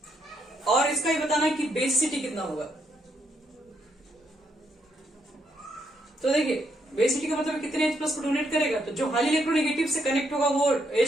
और इसका ही बताना है कि बेसिसिटी कितना होगा। तो देखिए, बेसिसिटी का मतलब कितने H प्लस को डोनेट करेगा। तो जो हाईली इलेक्ट्रोनेगेटिव से कनेक्ट होगा वो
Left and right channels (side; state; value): both; normal; correlation 0.75